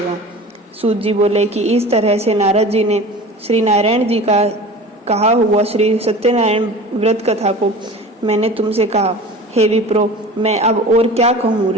सूत जी बोले कि इस तरह से नारद जी ने श्री नारायण जी का कहा हुआ श्री सत्यनारायण व्रत कथा को मैंने तुमसे कहा। हे विप्रो, मैं अब और क्या कहूँ?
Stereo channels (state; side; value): normal; both; correlation 0.38